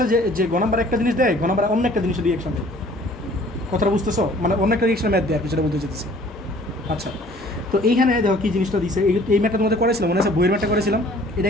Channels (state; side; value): normal; both; correlation 0.53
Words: যে গ নাম্বারে একটা জিনিস দেয়, ঘ নাম্বারে অন্য একটা জিনিসের রিয়েকশন দেয়। কথাটা বুঝতেছো? মানে অন্য একটা রিয়েকশন ম্যাথ দেয় আর কিছুটা বলতে যেতেছে। আচ্ছা, তো এইখানে দেখো কি জিনিসটা দিছে। এই ম্যাথটা তোমাদের করেছিলাম, মনে আছে বইয়ের ম্যাথটা করেছিলাম? এটা